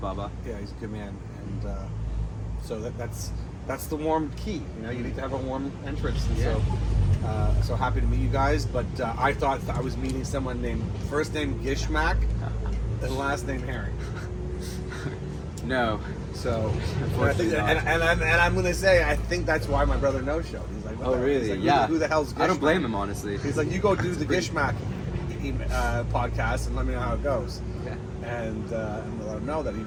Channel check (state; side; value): identical; both; correlation 1.00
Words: Yeah, he's a good man, and so that's the warm key. You know, you need to have a warm entrance, and so happy to meet you guys. But I thought I was meeting someone named first name Gishmack and last name Herring. No. So Unfortunately not. and I'm gonna say I think that's why my brother no showed. He's like, what Oh, the hell? really? He's like, Yeah. Who the hell's Gishmack? I don't blame him, honestly. He's like, you go do the Gishmack podcast and let me know how it goes. Okay. And let him know that he